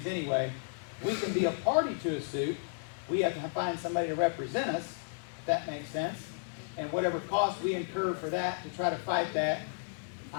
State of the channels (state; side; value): silent; right; digital silence